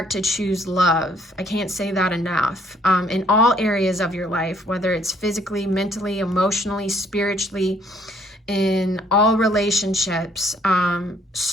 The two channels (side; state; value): both; normal; correlation 0.64